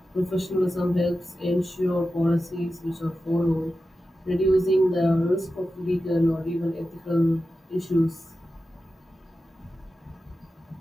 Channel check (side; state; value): both; normal; correlation 0.92